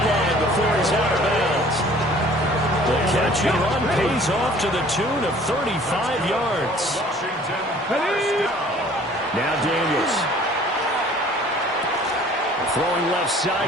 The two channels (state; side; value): normal; both; correlation 0.52